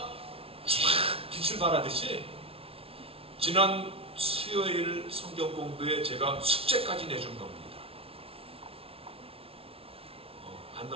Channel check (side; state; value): left; late; 0.27 ms